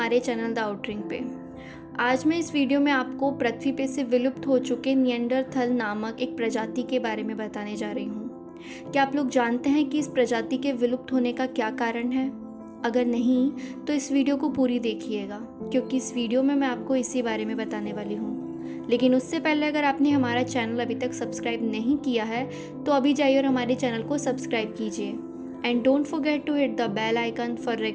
चैनल द आउटरिंग पे। आज मैं इस वीडियो में आपको पृथ्वी पे से विलुप्त हो चुके निएंडरथल नामक एक प्रजाति के बारे में बताने जा रही हूँ। क्या आप लोग जानते हैं कि इस प्रजाति के विलुप्त होने का क्या कारण है? अगर नहीं तो इस वीडियो को पूरी देखिएगा, क्योंकि इस वीडियो में मैं आपको इसी बारे में बताने वाली हूँ। लेकिन उससे पहले अगर आपने हमारा चैनल अभी तक सब्सक्राइब नहीं किया है तो अभी जाइए और हमारे चैनल को सब्सक्राइब कीजिए। And don't forget to hit the bell icon for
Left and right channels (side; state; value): both; identical; correlation 1.00